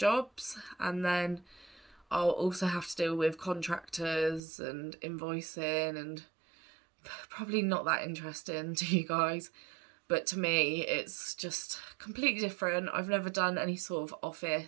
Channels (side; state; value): left; drops out; at 4.4 s